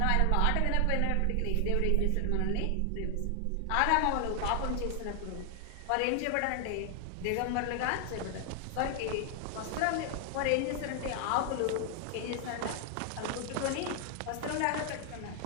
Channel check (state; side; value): different; both; correlation 0.00